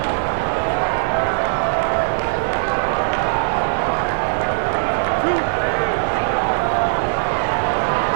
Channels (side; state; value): left; silent; digital silence